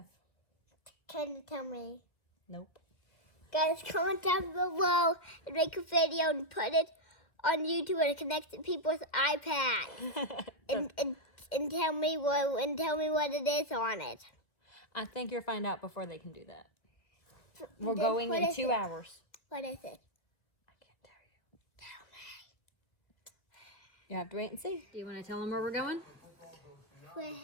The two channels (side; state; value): right; late; 1.7 ms